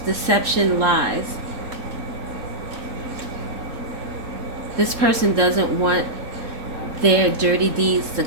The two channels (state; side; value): late; left; 3.7 ms